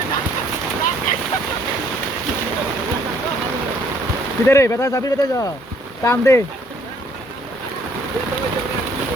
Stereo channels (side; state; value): both; normal; correlation 0.62